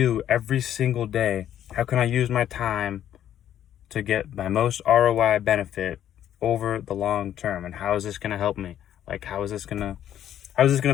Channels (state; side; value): quieter; right; 10.8 dB